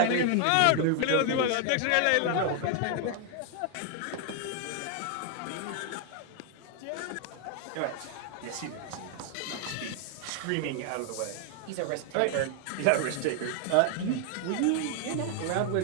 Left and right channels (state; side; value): different; both; correlation 0.00